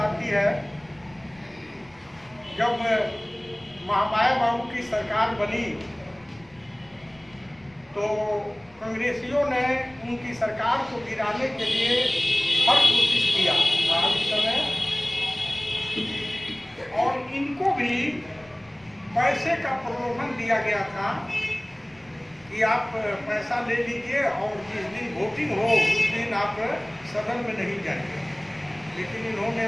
है, जब महामाया बाबू की सरकार बनी तो कांग्रेसियों ने उनकी सरकार को गिराने के लिए हर कोशिश किया उस समय, और इनको भी पैसे का प्रलोभन दिया गया था कि आप पैसा ले लीजिए और जिस दिन वोटिंग हो उस दिन आप सदन में नहीं जाएंगे। लेकिन इन्होंने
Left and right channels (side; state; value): left; noise; rumble, 29 dB below the sound